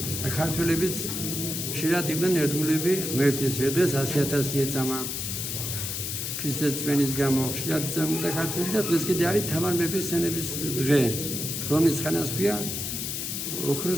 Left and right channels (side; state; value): left; noise; hiss, 3 dB below the sound